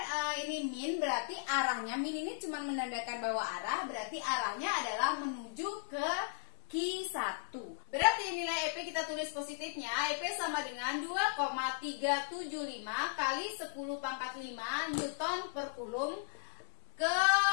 ini min, berarti arahnya, min ini cuma menandakan bahwa arah, berarti arahnya adalah menuju ke Q1. Berarti nilai EP kita tulis positifnya, EP sama dengan 2,375 kali 10 pangkat 5 Newton per Coulomb ke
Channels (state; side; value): silent; right; digital silence